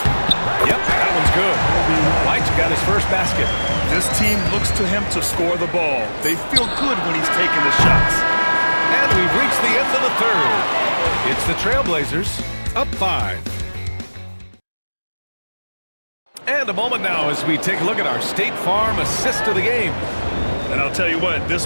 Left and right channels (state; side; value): inverted; both; correlation -1.00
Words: Yep, that one's good. White's got his first basket. This team looks to him to score the ball. They feel good when he's taking the shots. And we've reached the end of the third. It's the Trailblazers up 5. And a moment now as we take a look at our State Farm assist of the game. And I'll tell you what, this